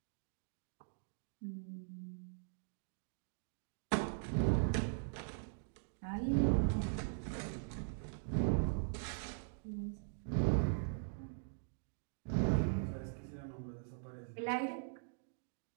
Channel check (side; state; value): left; silent; digital silence